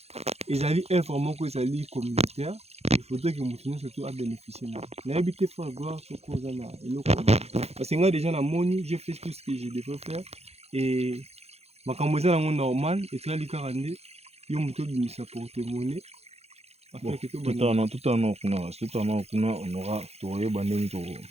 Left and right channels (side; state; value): left; late; 0.30 ms